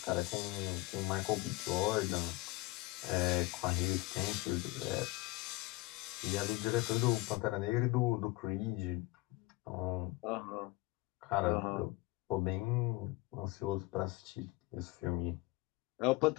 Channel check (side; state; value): right; quieter; 21.8 dB